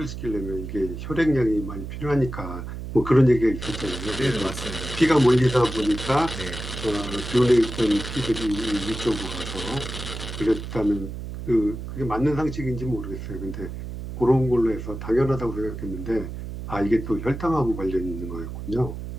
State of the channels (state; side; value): noise; right; hum, 8 dB below the sound